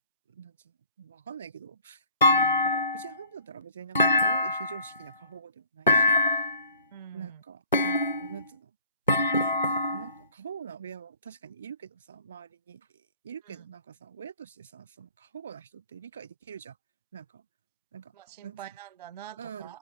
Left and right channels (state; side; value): inverted; both; correlation -0.54